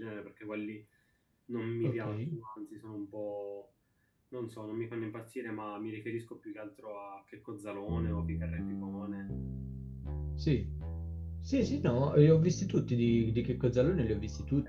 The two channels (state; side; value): identical; both; correlation 1.00